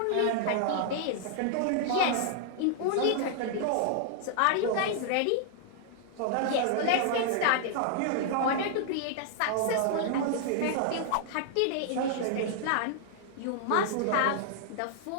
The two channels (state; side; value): different; both; correlation -0.01